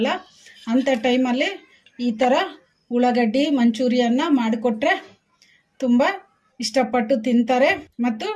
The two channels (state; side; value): identical; both; correlation 1.00